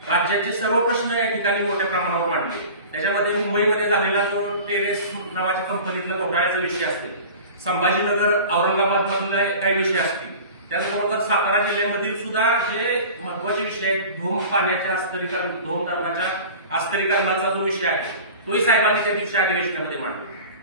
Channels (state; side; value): inverted; both; correlation -0.39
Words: राज्याचे सर्व प्रश्न या ठिकाणी मोठ्या प्रमाणावर मांडले. त्याच्यामध्ये मुंबईमध्ये झालेला जो टेरेस नावाच्या कंपनीतला घोटाळ्याचा विषय असेल, संभाजीनगर औरंगाबाद मधले काही विषय असतील, त्याचबरोबर सातारा जिल्ह्यामधील सुद्धा जे महत्वाचे विषय आहेत, धूम पाण्याच्या अस्तरीकरण, धूम धरणाच्या अस्तरीकरणाचा जो विषय आहे तोही साहेबांनी त्या दिवशी अधिवेशनामध्ये मांडला.